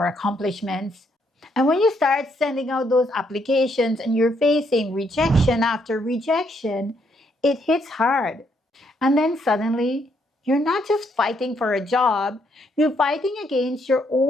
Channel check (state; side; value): normal; both; correlation 0.73